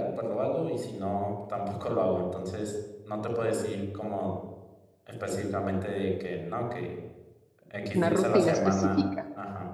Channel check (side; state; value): both; identical; correlation 1.00